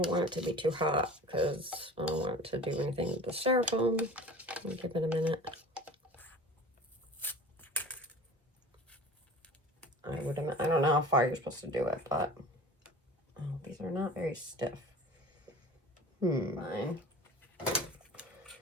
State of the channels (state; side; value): normal; both; correlation 0.40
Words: want it to be too hot because I don't want it to do anything with the styrofoam. I'll give it a minute. I don't know how far you're supposed to do it, but oh, these are not very stiff. Fine.